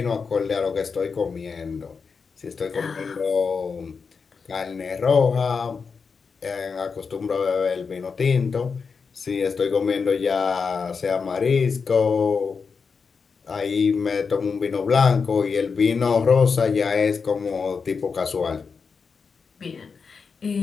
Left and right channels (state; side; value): quieter; right; 5.3 dB